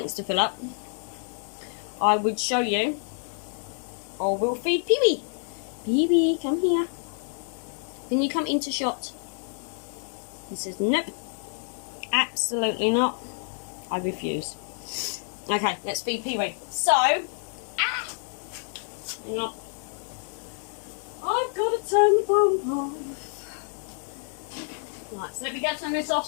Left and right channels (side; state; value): right; silent; 60 dB below the other